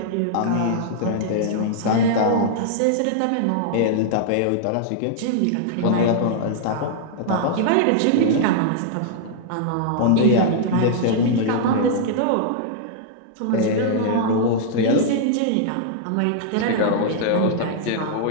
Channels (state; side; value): different; both; correlation -0.01